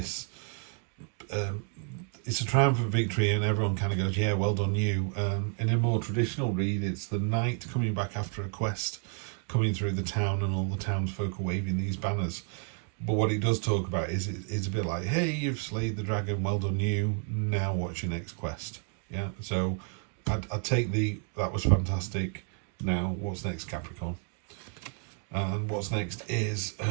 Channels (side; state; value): left; quieter; 39.8 dB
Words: it's a triumphant victory and everyone kind of goes, yeah, well done you. In a more traditional read, it's the knight coming back after a quest, coming through the town and all the townsfolk are waving these banners. But what it does talk about is it's a bit like, hey, you've slayed the dragon, well done you, now what's your next quest? Yeah, so I'd take that was fantastic. Now, what's next, Capricorn? And what's next is